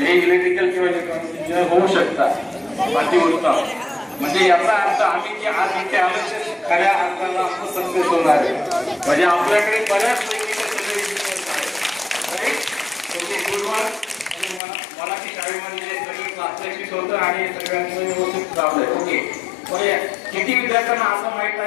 हे इलेक्ट्रिकल किंवा इलेक्ट्रॉनिक इंजिनियर होऊ शकतात. अतिउत्तम. म्हणजे याचा अर्थ आम्ही जे आज इथे आलो ते खऱ्या अर्थाला आपण सक्सेस होणार आहे. म्हणजे आपल्याकडे बऱ्याचपैकी मराठी शाळेमध्ये सगळे प्रात्यक्षिक होतं आणि सगळ्यांचं व्यवस्थित लावलंय. ओके, किती विद्यार्थ्यांना असं माहित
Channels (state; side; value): drops out; right; at 14.6 s